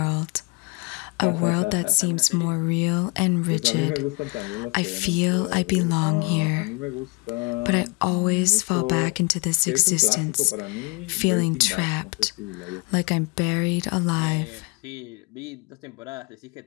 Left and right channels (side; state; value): right; quieter; 29.3 dB